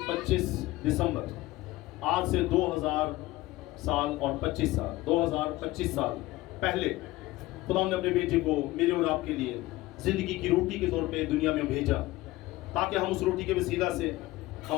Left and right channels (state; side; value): quieter; right; 18.4 dB